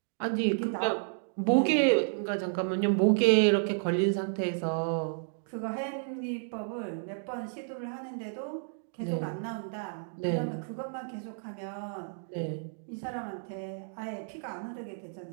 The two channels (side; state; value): left; silent; digital silence